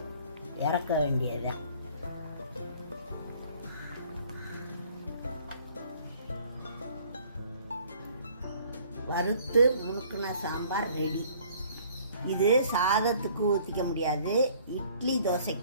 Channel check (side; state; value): both; inverted; correlation -0.56